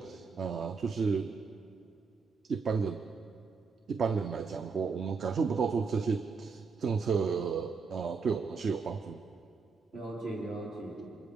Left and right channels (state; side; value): quieter; left; 5.0 dB